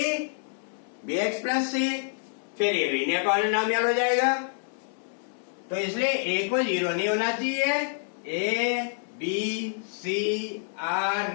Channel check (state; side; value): silent; right; 60 dB below the other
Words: bx plus c। फिर ये लीनियर पॉलिनोमियल हो जाएगा। तो इसलिए a को 0 नहीं होना चाहिए। a b c are